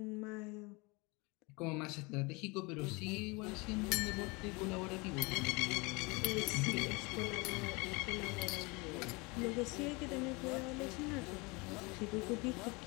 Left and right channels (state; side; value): quieter; right; 27.0 dB